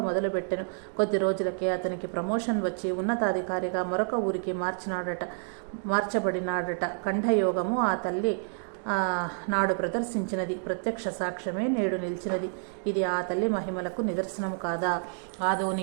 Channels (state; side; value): silent; left; 59 dB below the other